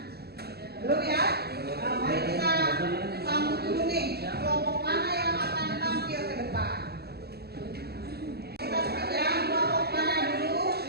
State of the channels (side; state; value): left; late; 0.46 ms